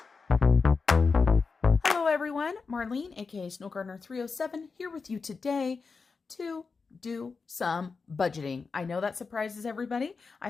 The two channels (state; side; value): quieter; right; 4.7 dB